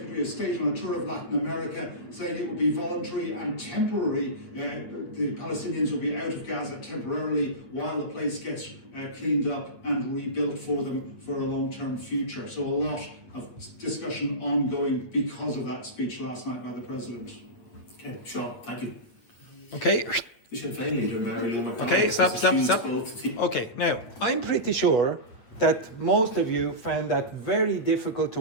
of State, on a tour of Latin America, saying it will be voluntary and temporary. The Palestinians will be out of Gaza temporarily while the place gets cleaned up and rebuilt for them for a long-term future. So a lot of discussion ongoing because of that speech last night by the President. Okay, Sean, thank you. Okay. Okay, stop. Okay, now, I'm pretty sure that most of you found that very difficult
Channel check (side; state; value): right; late; 8.5 ms